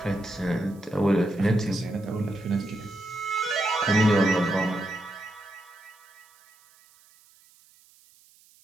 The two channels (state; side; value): noise; right; hiss, 29 dB below the sound